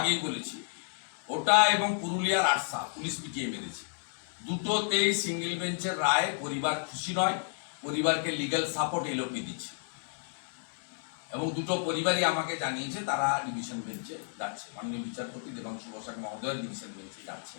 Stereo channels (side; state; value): right; silent; digital silence